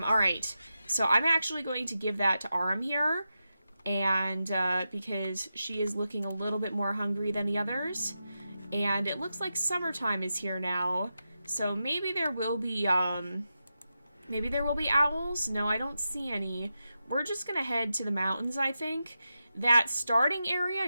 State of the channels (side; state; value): both; inverted; correlation -0.89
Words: All right. So I'm actually going to give that to Aram here. And because she is looking a little bit more hungry than the others. And it looks like summertime is here now. So maybe there will be owls. No, I don't see any. We're just going to head to the mountains, I think. That starting area